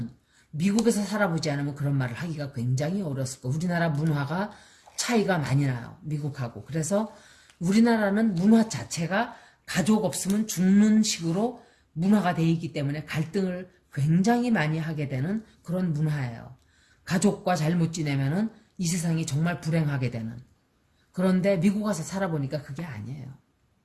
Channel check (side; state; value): both; identical; correlation 1.00